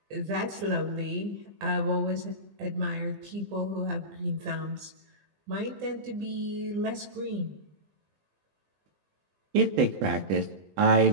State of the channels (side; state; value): left; late; 20 ms